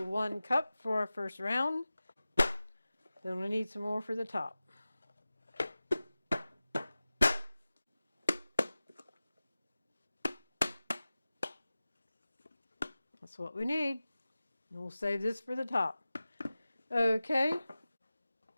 1 cup for our first round. Then we need some more for the top. That's what we need. And we'll save this for the top. Okay.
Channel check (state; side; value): inverted; both; correlation -0.96